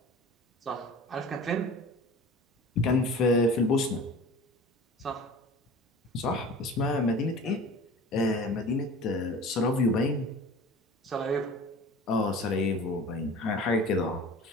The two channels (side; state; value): both; normal; correlation 0.39